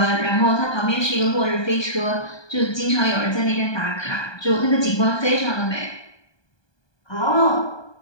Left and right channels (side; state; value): right; late; 1.2 ms